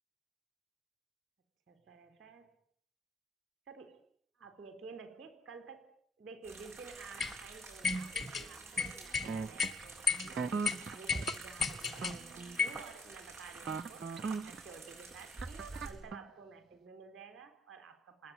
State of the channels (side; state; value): both; normal; correlation 0.66